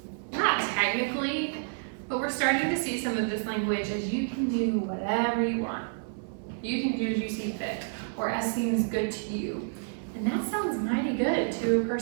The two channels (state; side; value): silent; left; 58 dB below the other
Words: Not technically, but we're starting to see some of this language as you can do whatever you want. You can do as you see fit, or as seems good to you. And that sounds mighty good to a